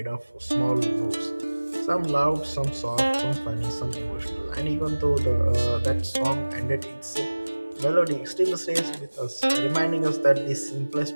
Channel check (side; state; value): both; inverted; correlation -1.00